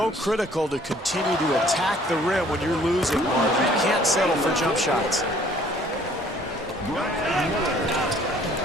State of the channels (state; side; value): normal; both; correlation 0.58